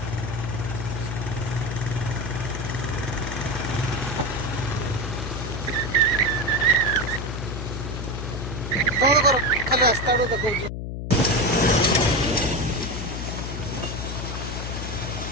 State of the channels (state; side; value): noise; left; hum, 5 dB below the sound